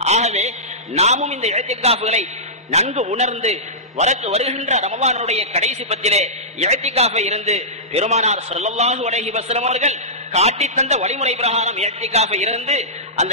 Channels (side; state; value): both; normal; correlation -0.17